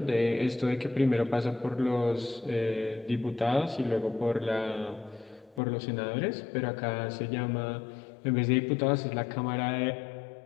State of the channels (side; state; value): right; drops out; at 5.6 s